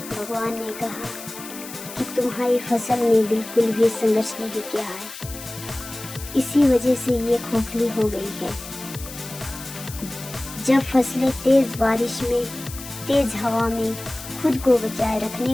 भगवान ने कहा कि तुम्हारी फसल ने बिल्कुल भी संघर्ष नहीं किया है, इसी वजह से ये खोखली हो गई है। जब फसलें तेज बारिश में, तेज हवा में खुद को बचाए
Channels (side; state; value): left; noise; hiss, 13 dB below the sound